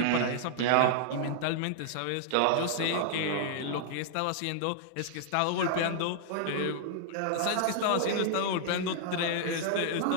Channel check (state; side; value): different; both; correlation -0.01